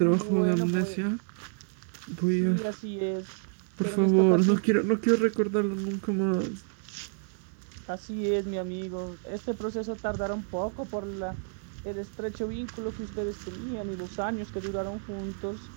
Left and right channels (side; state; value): left; silent; digital silence